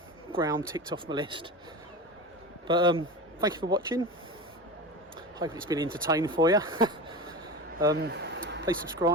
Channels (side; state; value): both; normal; correlation 0.26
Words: ground ticked off my list. But thank you for watching. Hope it's been entertaining for you. Please